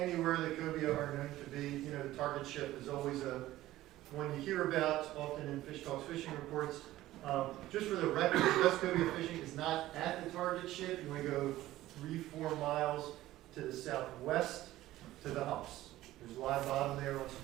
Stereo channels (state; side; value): quieter; left; 15.5 dB